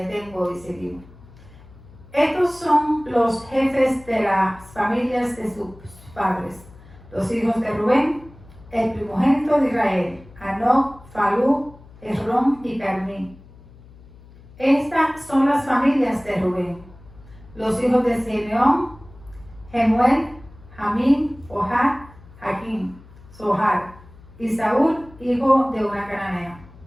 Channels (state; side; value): noise; left; hum, 22 dB below the sound